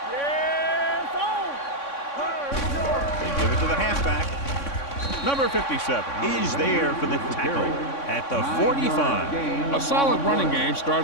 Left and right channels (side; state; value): right; late; 3.6 ms